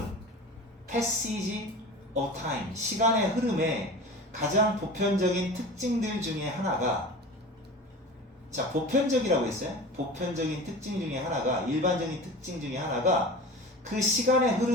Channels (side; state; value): both; normal; correlation 0.35